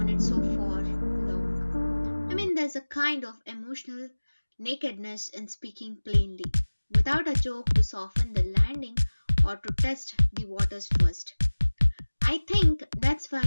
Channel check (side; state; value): both; inverted; correlation -1.00